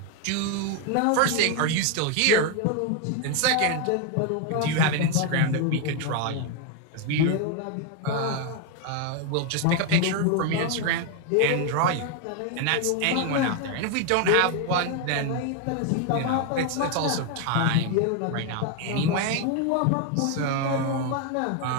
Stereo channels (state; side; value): different; both; correlation 0.01